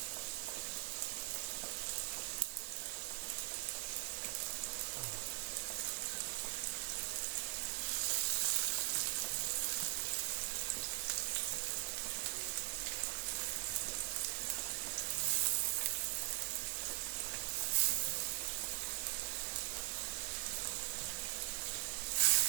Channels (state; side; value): silent; left; 50 dB below the other